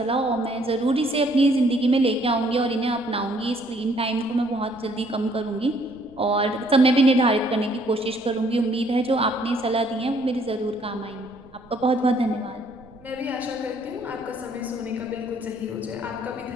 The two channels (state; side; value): noise; right; rumble, 25 dB below the sound